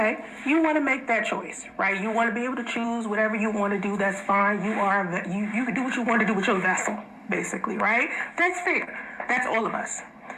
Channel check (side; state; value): both; identical; correlation 1.00